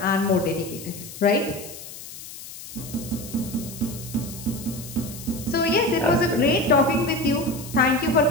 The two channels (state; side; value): noise; left; hiss, 13 dB below the sound